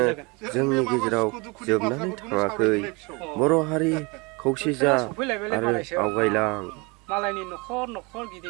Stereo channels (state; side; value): quieter; left; 27.9 dB